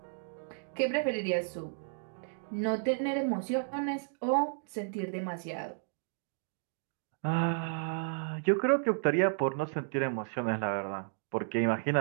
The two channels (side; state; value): left; silent; digital silence